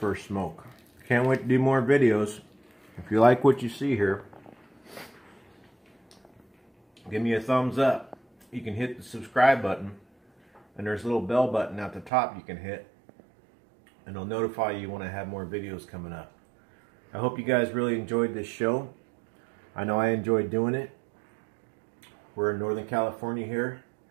smoke. Can't wait to do more videos. If you like what you see here, give me a thumbs up. You can hit the subscribe button, and there's a little bell button at the top you can hit, and it'll notify you when I have more videos coming up. I hope you guys really enjoyed this show. I know I enjoyed doing it. We're in Northern California here,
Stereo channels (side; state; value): left; drops out; at 12.1 s